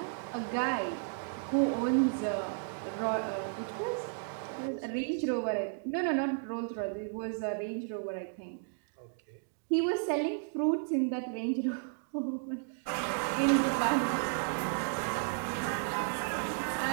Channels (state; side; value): silent; left; digital silence